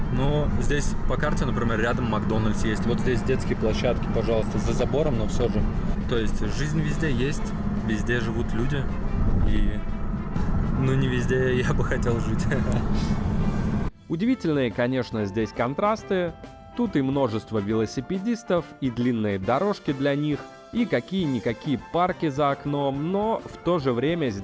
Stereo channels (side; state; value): both; identical; correlation 1.00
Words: Но здесь по карте, например, рядом Макдональдс есть. Вот здесь детские площадки, пожалуйста, за забором, но все же. То есть жизнь везде есть, везде живут люди. И ну не везде я бы хотел жить. Удивительные, конечно, здесь контрасты. Тут и множество велосипедистов, и длинные дорожки для них, и какие-никакие парки за окном, но в то же время